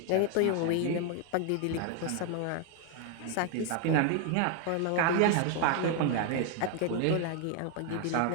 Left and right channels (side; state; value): both; different; correlation 0.00